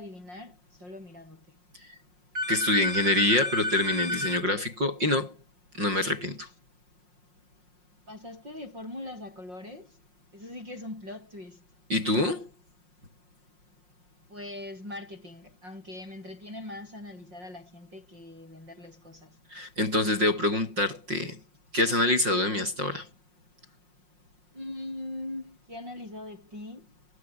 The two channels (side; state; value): left; late; 5.6 ms